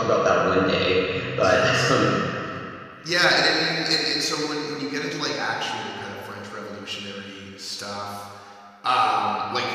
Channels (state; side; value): identical; both; correlation 1.00